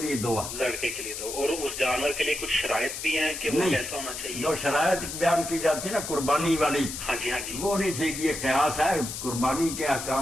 لیے دو ہے۔ لڑکے کے لیے دو، اور اس جانور کے لیے کچھ شرائط بھی ہیں کہ وہ کیسا ہونا چاہیے؟ جو شرائط بیان کی جاتی ہے نا قربانی والی، ہاں جی ہاں جی، وہ نہیں ٹھیک، یہ قیاس ہے۔ قربانی کے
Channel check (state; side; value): noise; left; hiss, 7 dB below the sound